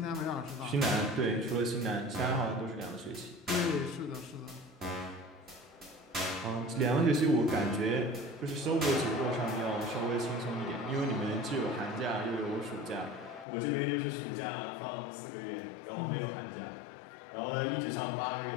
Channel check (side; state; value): right; drops out; at 13.5 s